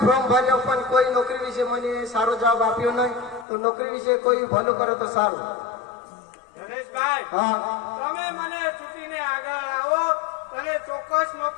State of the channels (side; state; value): right; drops out; at 3.5 s